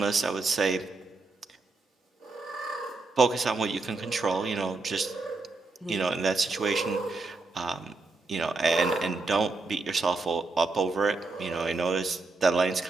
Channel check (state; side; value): quieter; left; 3.7 dB